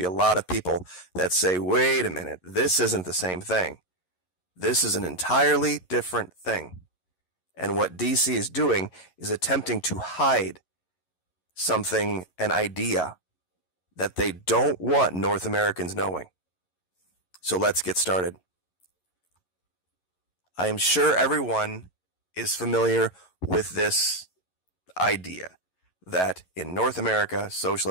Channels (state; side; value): late; right; 11 ms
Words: a lot of people that say, wait a minute, this isn't the same thing. This is an entirely different thing. And what DC is doing is attempting to hide something, an idea, that they don't want North Americans knowing. So let's get started. I am sure everyone is familiar with this idea that in North America,